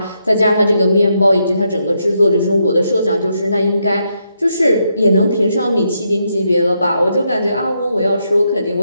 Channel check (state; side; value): inverted; both; correlation -0.80